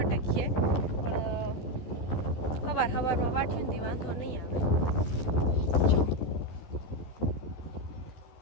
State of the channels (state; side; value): late; right; 13 ms